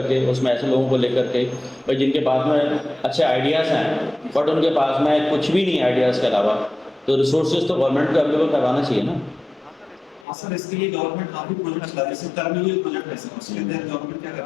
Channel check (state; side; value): drops out; right; at 10.2 s